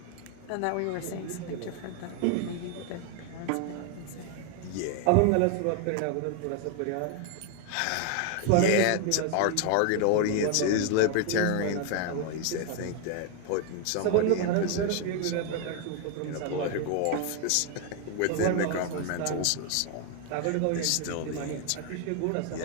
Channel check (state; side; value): different; both; correlation 0.01